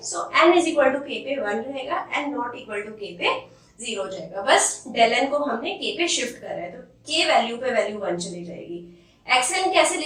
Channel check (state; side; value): identical; both; correlation 1.00